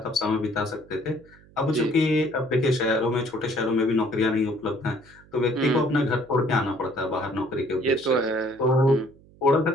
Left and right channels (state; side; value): noise; right; hum, 26 dB below the sound